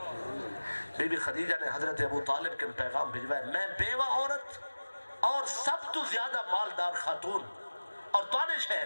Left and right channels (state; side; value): inverted; both; correlation -1.00